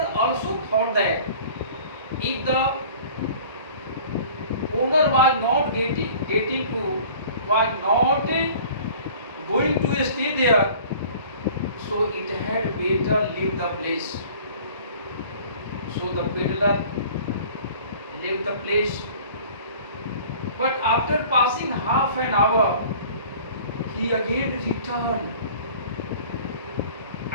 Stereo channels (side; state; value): both; inverted; correlation -0.47